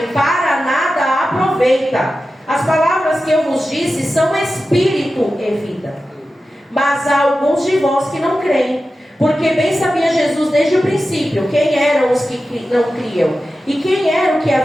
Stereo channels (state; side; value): normal; both; correlation 0.93